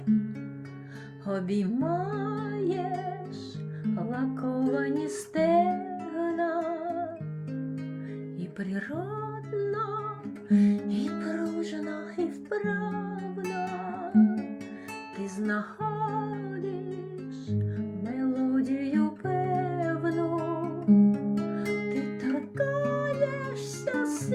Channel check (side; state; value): both; identical; correlation 1.00